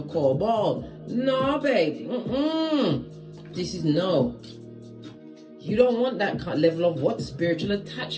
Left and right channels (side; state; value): both; identical; correlation 1.00